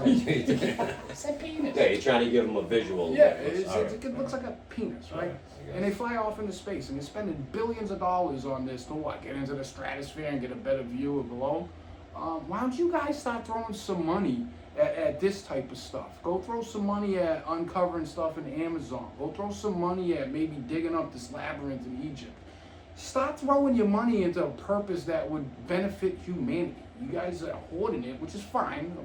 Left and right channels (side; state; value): both; identical; correlation 1.00